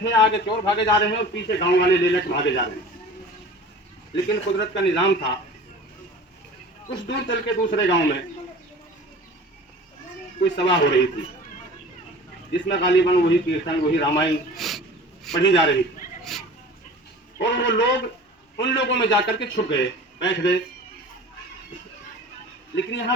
आगे चोर भागे जा रहे हैं और पीछे गांव वाले ले लेकर भागे जा रहे हैं। लेकिन कुदरत का निजाम था, कुछ दूर चल के दूसरे गांव में कोई सभा हो रही थी, जिसमें गालिबन वही कीर्तन, वही रामायण पढ़ी जा रही थी। और वो लोग उन लोगों में जाकर के छुप गए, बैठ गए। लेकिन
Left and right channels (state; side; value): normal; both; correlation 0.40